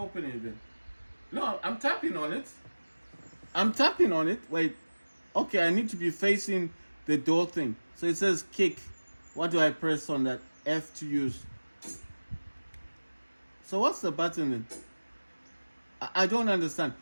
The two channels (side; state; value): both; inverted; correlation -1.00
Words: open it then? No, I'm tapping on it. I'm tapping on it. Wait. Okay, I need to be facing the door thing. So it says kick. What do I press on that? F to use. So what's the button then? I don't understand.